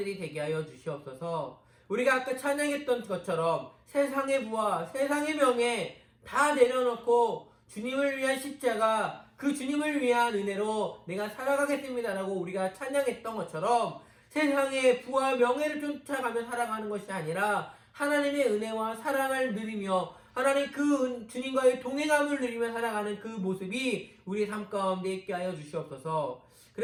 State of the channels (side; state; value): both; identical; correlation 1.00